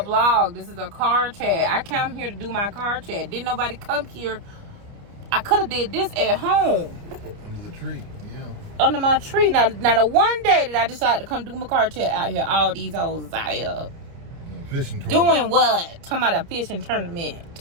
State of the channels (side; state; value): left; late; 30 ms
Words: a vlog. This is a car chat. I came here to do my car chat. Didn't nobody come here. I could have did this at home. Under the tree, yeah. Under my tree. Now the one day that I decided to come do my car chat out here, all these hoes is out here. Fishing tournament. Doing what? Talking about a fishing tournament.